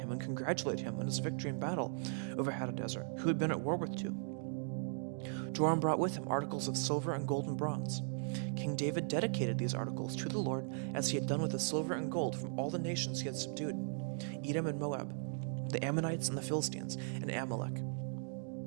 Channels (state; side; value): silent; left; digital silence